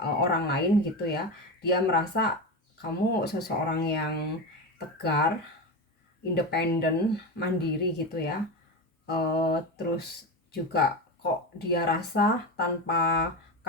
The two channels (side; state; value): both; normal; correlation 0.20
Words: lain gitu ya. Dia merasa kamu seseorang yang tegar, independen, mandiri gitu ya. Terus juga kok dia rasa tanpa